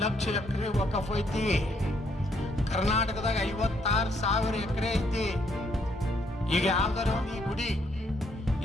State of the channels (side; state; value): both; normal; correlation 0.71